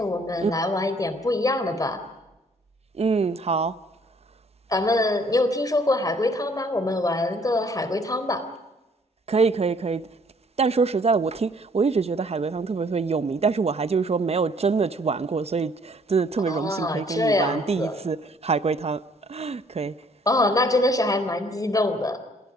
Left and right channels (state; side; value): normal; both; correlation 0.61